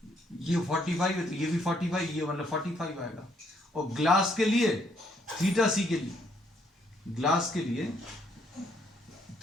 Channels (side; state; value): both; normal; correlation 0.70